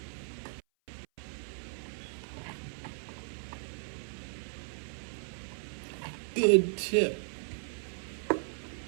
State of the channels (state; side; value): silent; left; 54 dB below the other